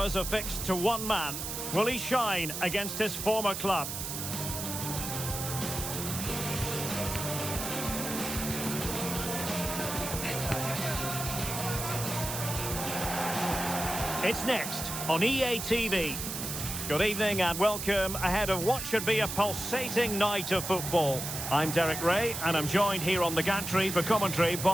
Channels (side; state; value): right; noise; hiss, 5 dB below the sound